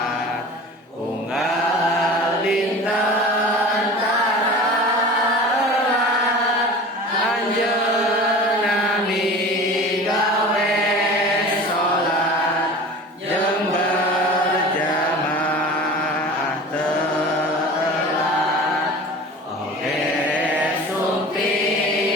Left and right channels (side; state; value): both; normal; correlation 0.38